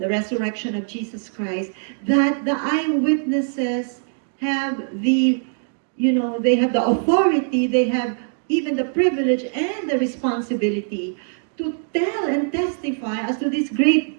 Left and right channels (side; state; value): left; silent; digital silence